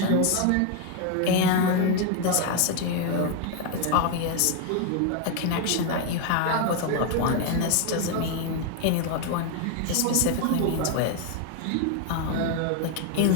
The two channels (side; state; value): both; different; correlation 0.01